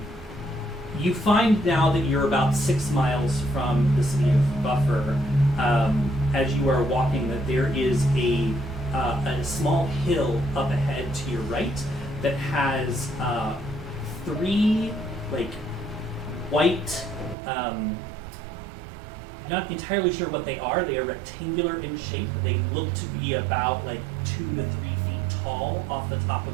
find now that you're about 6 miles from the city of Buffer. As you are walking, that there is a small hill up ahead to your right that has 3 like white. Not entirely sure what they are. They are rectangular in shape. They look to be about like 2 to 3 feet tall off the top of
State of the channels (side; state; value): left; drops out; at 17.4 s